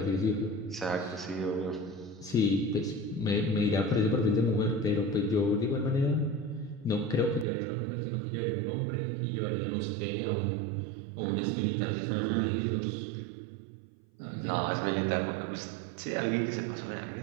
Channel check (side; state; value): left; drops out; at 7.5 s